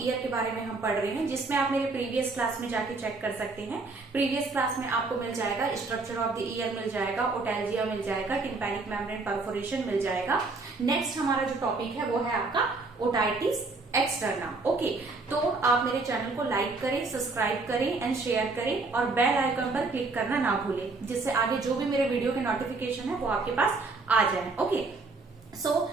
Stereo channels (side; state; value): left; quieter; 3.7 dB